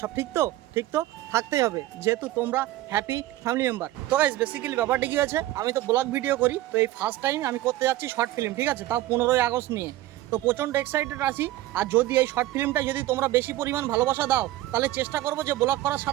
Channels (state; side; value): quieter; left; 15.7 dB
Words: ঠিক তো? ঠিক তো থাকতেই হবে, যেহেতু তোমরা হ্যাপি ফ্যামিলি মেম্বার। তো গাইস বেসিক্যালি ব্যাপারটা কি আছে, আমি তো ব্লগ ভিডিও করি, তো এই ফার্স্ট টাইম আমি করতে যাচ্ছি শর্ট ফিল্ম, ঠিক আছে, তাও 15ই আগস্ট নিয়ে। তো প্রচণ্ড এক্সাইটেড আছি। আর যদি এই শর্ট ফিল্মটা যদি তোমরা বেশি পরিমাণ ভালোবাসা দাও, তাহলে চেষ্টা করবো যে ব্লগ করার